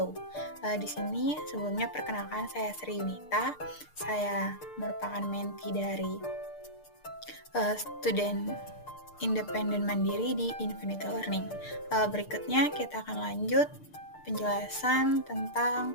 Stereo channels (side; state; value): right; late; 6.6 ms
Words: Di sini sebelumnya perkenalkan, saya Sri Yunita. Saya merupakan mentee dari student independen mandiri di Infinity Learning. Berikutnya kita akan lanjut penjelasan